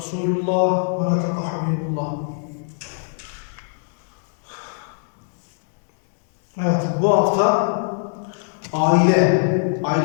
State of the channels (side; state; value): right; silent; digital silence